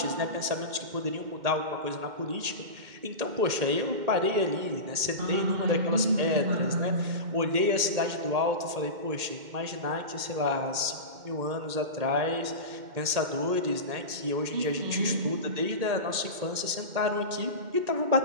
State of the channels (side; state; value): left; late; 2.1 ms